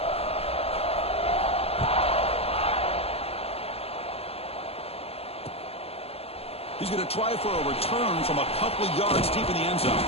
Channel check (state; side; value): late; right; 0.29 ms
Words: He's going to try for a return from a couple of yards deep in the end zone.